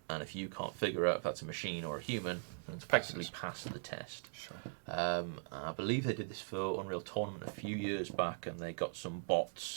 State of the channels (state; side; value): silent; left; digital silence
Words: if you can't figure out if that's a machine or a human, then it's effectively passed the test. Sure. I believe they did this for Unreal Tournament a few years back, and they got some